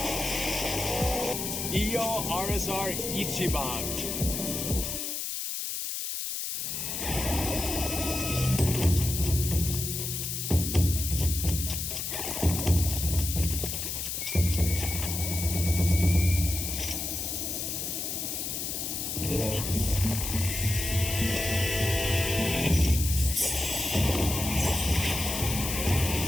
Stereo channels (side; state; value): left; noise; hiss, 3 dB below the sound